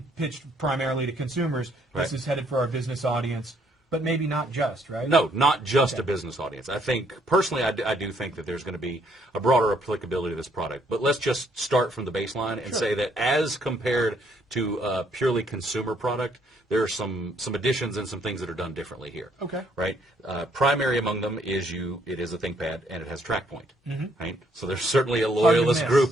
pitched primarily to consumers, this is headed for our business audience. But maybe not just, right? No, not just a business audience. I think, personally, I do think that there's going to be a broader applicability to this product. But let's just start from the baseline and say that as compared to a purely consumer product, there are some additions and some things that are done differently here. Okay. Right? Primary among them is it is a ThinkPad, and it has TrackPoint. Right? So there's certainly a loyalist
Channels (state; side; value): normal; both; correlation 0.68